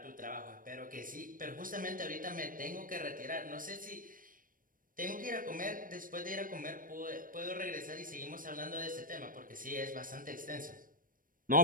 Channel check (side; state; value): left; late; 0.40 ms